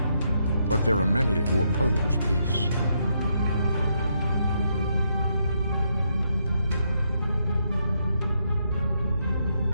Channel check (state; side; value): inverted; both; correlation -0.78